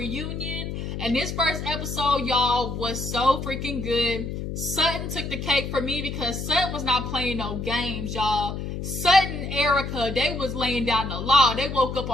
and this first episode, y'all, was so freaking good. Sutton took the cake for me because Sutton was not playing no games, y'all. Sutton and Erica, they was laying down the law. They woke up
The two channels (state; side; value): noise; left; hum, 5 dB below the sound